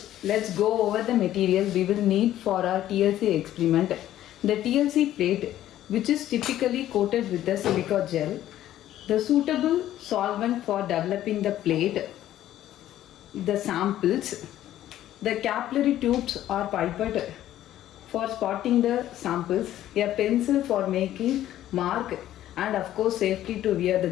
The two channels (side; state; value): right; quieter; 12.9 dB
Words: let's go over the material we will need for our TLC experiment. The TLC plate, which is typically coated with the silica gel, the suitable solvent for developing the plate, the samples, the capillary tubes are pipette for spotting the samples, a pencil for making mark, and of course safety to wear